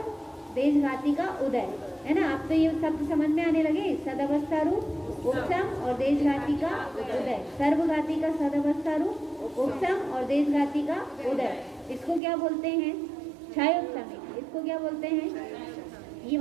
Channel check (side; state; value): left; drops out; at 12.2 s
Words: देशघाती का उदय, है ना। आप तो ये शब्द समझ में आने लगे, सदवस्था रूप उपशम और देशघाती का उदय। सर्वघाती का सदवस्था रूप उपशम और देशघाती का उदय, इसको क्या बोलते हैं, क्षयोपशमिक। इसको क्या बोलते हैं, ये